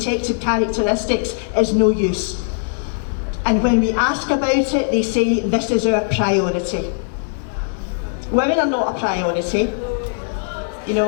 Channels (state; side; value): silent; right; digital silence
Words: characteristics, is no use. And when we ask about it, they say this is our priority. Women are not a priority. You